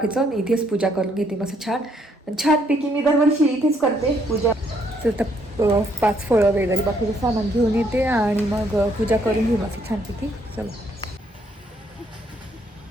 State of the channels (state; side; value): normal; both; correlation 0.70